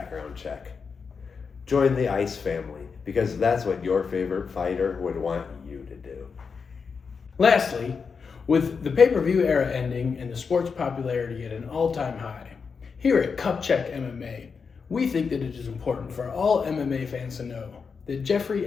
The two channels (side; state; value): right; quieter; 5.5 dB